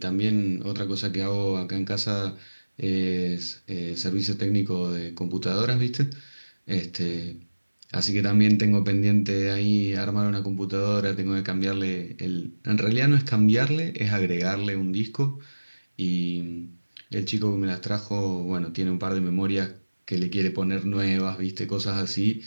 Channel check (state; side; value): inverted; both; correlation -1.00